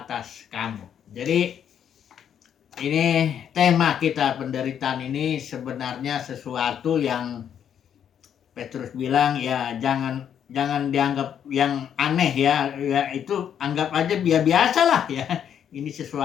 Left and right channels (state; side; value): quieter; right; 8.9 dB